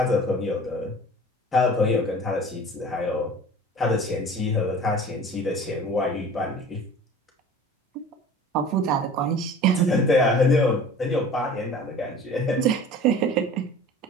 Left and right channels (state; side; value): normal; both; correlation 0.43